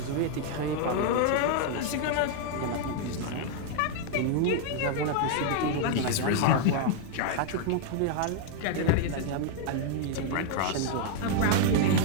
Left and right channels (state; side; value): different; both; correlation 0.00